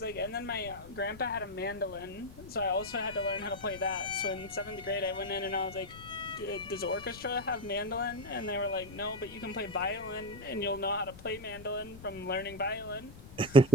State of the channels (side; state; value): left; noise; rumble, 17 dB below the sound